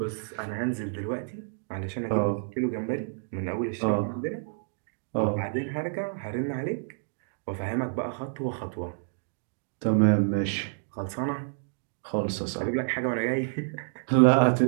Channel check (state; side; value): silent; left; digital silence